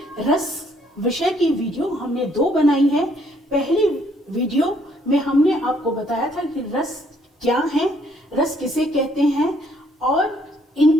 रस विषय की वीडियो हमने 2 बनाई है। पहली वीडियो में हमने आपको बताया था कि रस क्या है, रस किसे कहते हैं और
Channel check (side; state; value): both; normal; correlation 0.66